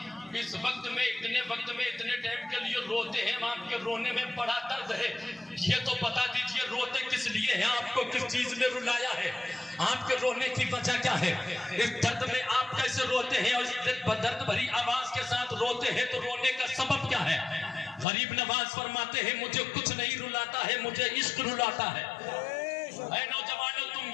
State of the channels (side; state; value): right; drops out; at 18.1 s